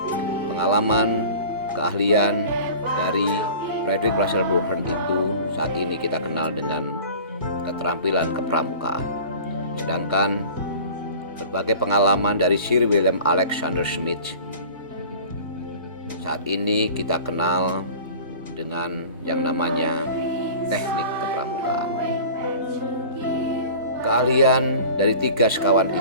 pengalaman, keahlian dari Frederick Russell Burton itu saat ini kita kenal dengan keterampilan kepramukaan. Sedangkan berbagai pengalaman dari Sir William Alexander Smith saat ini kita kenal dengan yang namanya teknik kepramukaan. Keahlian dari tiga sekawan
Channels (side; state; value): both; inverted; correlation -0.41